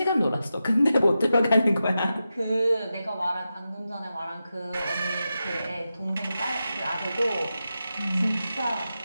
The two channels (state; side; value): inverted; both; correlation -0.90